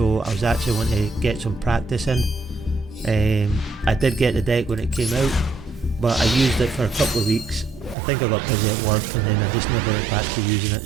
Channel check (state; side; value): drops out; left; at 8.0 s